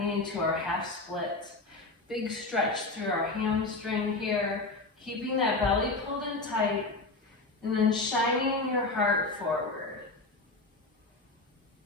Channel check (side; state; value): right; quieter; 3.3 dB